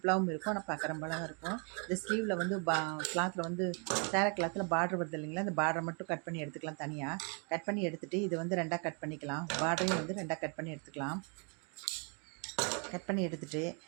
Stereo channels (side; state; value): left; quieter; 37.3 dB